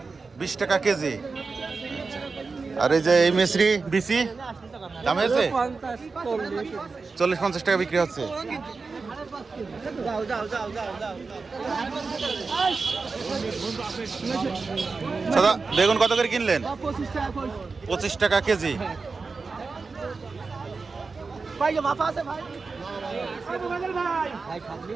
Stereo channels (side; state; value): left; quieter; 4.3 dB